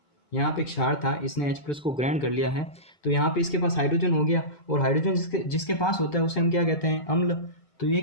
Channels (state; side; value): late; right; 2.2 ms